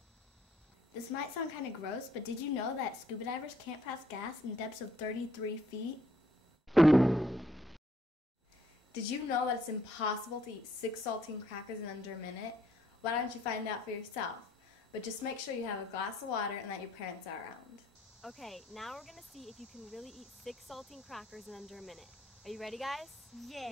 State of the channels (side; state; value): both; normal; correlation 0.67